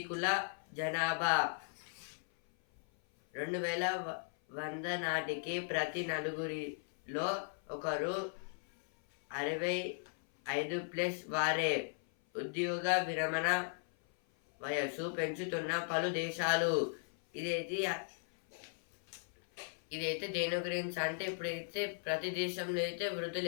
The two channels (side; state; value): right; silent; 53 dB below the other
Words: జనాభా. 2100 నాటికి ప్రతి నలుగురిలో ఒకరు 65+ వారే. ఉద్యోగ విరమణ వయస్సు పెంచుతున్న పలు దేశాలు. ఇదైతే దేని గురించి అంటే ఇప్పుడైతే ప్రతి దేశంలో అయితే వృద్ధులు